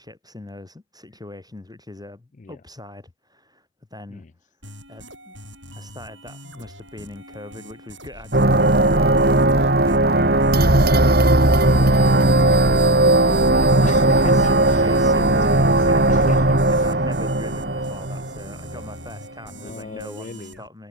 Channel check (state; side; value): normal; both; correlation 0.16